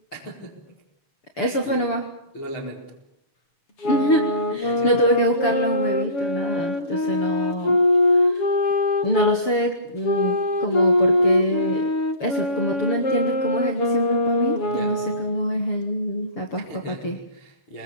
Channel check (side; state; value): right; late; 6.9 ms